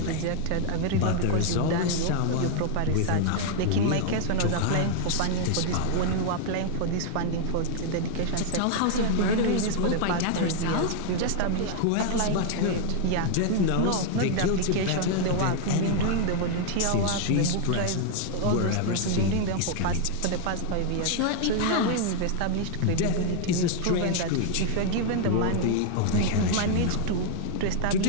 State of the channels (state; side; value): different; both; correlation 0.00